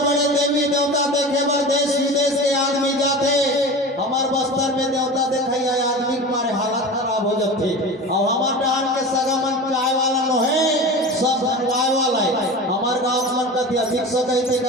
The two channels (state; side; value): normal; both; correlation 0.32